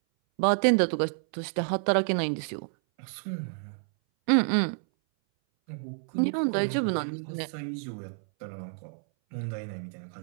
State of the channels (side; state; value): left; silent; 58 dB below the other